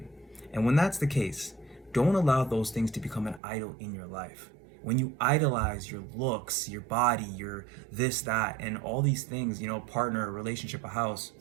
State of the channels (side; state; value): left; drops out; at 3.4 s